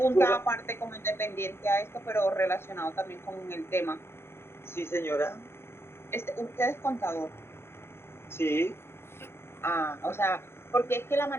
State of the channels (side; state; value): right; late; 0.12 ms